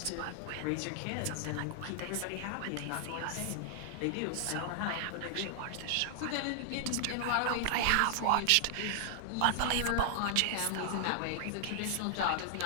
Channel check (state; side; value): different; both; correlation 0.00